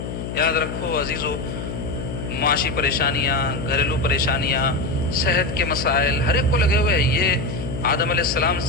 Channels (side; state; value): left; noise; hum, 6 dB below the sound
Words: یاد رکھو عزیزو، معاشی پریشانیاں، گھریلو پریشانیاں، صحت کے مسائل ہر ایک کو لگے ہوئے ہیں۔ یہ آدم علیہ السلام